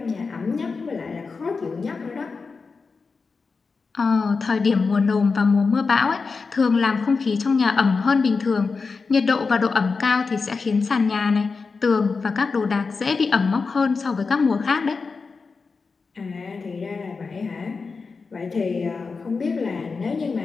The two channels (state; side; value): quieter; right; 4.6 dB